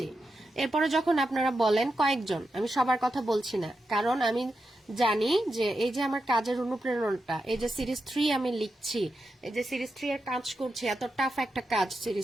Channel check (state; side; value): normal; both; correlation 0.88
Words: এরপরে যখন আপনারা বলেন কয়েকজন, আমি সবার কথা বলছি না, কারণ আমি জানি যে এই যে আমার কাজের অনুপ্রেরণাটা, এই যে সিরিজ 3 আমি লিখছি, এই যে সিরিজ 3 এর কাজ করছি, এত টাফ একটা কাজ